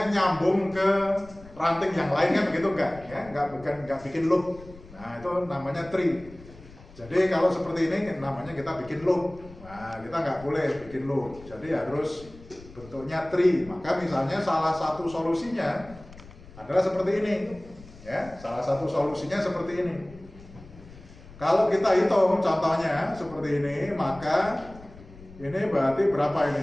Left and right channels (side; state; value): left; noise; rumble, 20 dB below the sound